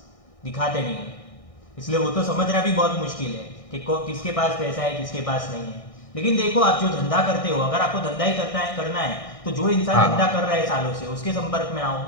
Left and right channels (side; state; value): right; late; 1.6 ms